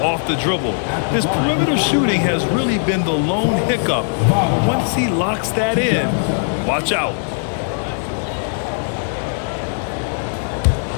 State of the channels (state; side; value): silent; right; 57 dB below the other